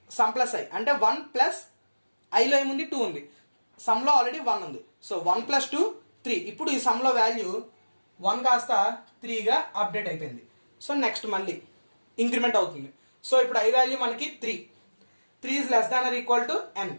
I అంటే 1 ప్లస్ ఐలో ఏముంది 2 ఉంది, సమ్లో ఆల్రెడీ 1 ఉంది. So 1 plus 2 3. ఇప్పుడు ఈ సమ్లో వాల్యూ 1 కాస్త 3గా అప్డేట్ అయిపోయింది. సో నెక్స్ట్ మళ్ళీ ఇంక్రిమెంట్ అవుతుంది. సో ఇప్పుడు ఐ వాల్యూ మనకి 3 is less than or equal to n,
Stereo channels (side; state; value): both; inverted; correlation -1.00